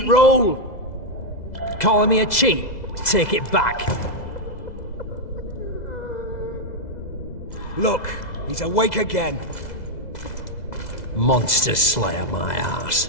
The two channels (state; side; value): late; right; 2.0 ms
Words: roll! Calling me a cheat? Take it back. Look, he's awake again. Monster slayer, my ass.